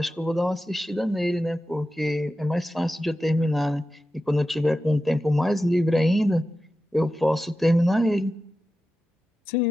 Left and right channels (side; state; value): both; normal; correlation 0.92